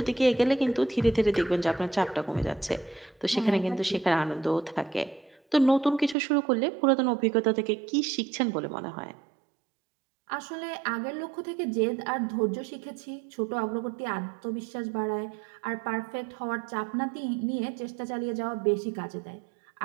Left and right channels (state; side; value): drops out; left; at 6.2 s